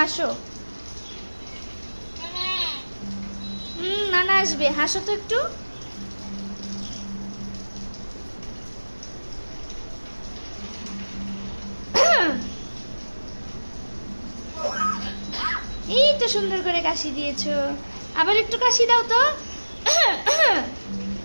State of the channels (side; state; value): both; inverted; correlation -1.00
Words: নানা আসবে, হাসো তো একটু। এই তো সুন্দর করে কাশি দিয়েছো। আবার একটু কাশি দাও তো।